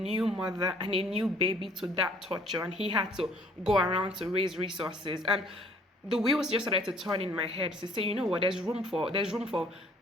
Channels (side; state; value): both; normal; correlation 0.58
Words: mother and a new baby to that torture? And he had to go around to raise resources. And the wheels just started to turn in my head to say, you know what, there's room for